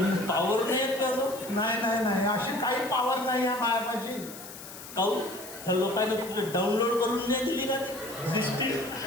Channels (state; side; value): noise; left; hiss, 14 dB below the sound